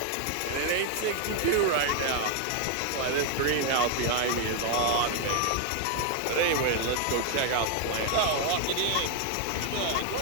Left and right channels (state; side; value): different; both; correlation 0.00